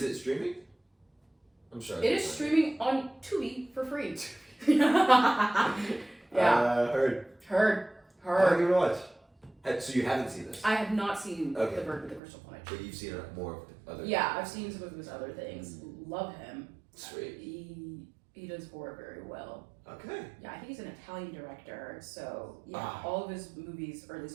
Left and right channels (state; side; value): drops out; left; at 12.2 s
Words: it streaming? I'm sure. It is streaming on Tubi for free. Yeah. Heard. I'll give it a watch. So you haven't seen this? I have not seen Okay. The Bird with the Crystal Plumage. But you've seen more of the other. Yeah, I've seen some of his other things. Love him. Sweet. He does horror very well. Okay. Yeah, I think he's an Italian director. So yeah, all of his movies, or at